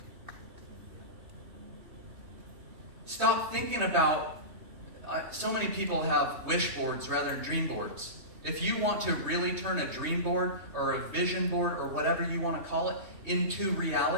Stop thinking about, so many people have wish boards rather than dream boards. If you want to really turn a dream board or a vision board or whatever you want to call it into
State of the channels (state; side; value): late; left; 3.2 ms